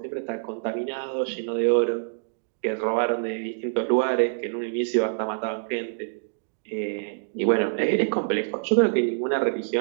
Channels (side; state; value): left; silent; digital silence